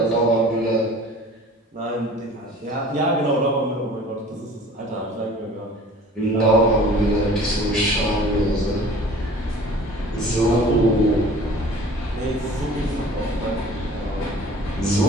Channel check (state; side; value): normal; both; correlation 0.46